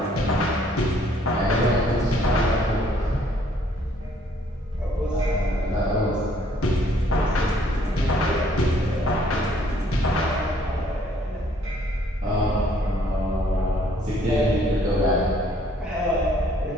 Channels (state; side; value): normal; both; correlation 0.63